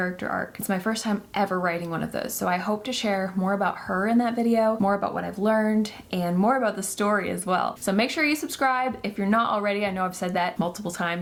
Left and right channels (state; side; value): identical; both; correlation 1.00